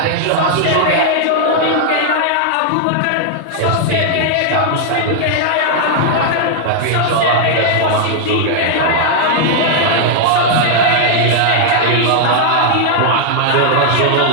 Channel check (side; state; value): both; different; correlation 0.00